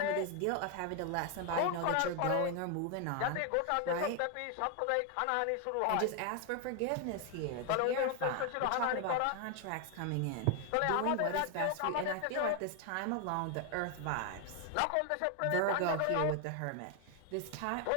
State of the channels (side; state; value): both; different; correlation 0.01